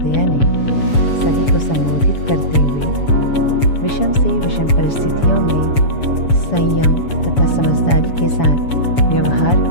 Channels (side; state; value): right; late; 7.0 ms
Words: ने सभी को संबोधित करते हुए विषम से विषम परिस्थितियों में संयम तथा समझदारी के साथ व्यवहार